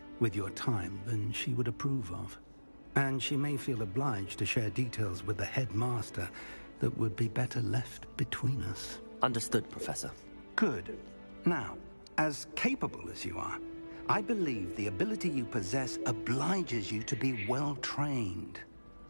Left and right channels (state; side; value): inverted; both; correlation -1.00